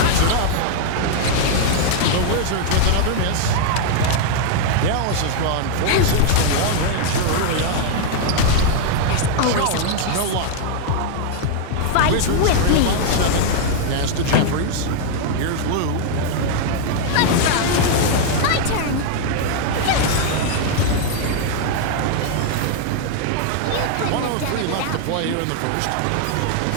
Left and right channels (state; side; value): different; both; correlation 0.00